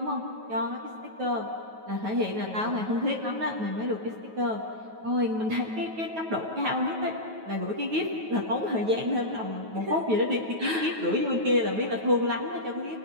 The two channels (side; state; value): left; late; 9.3 ms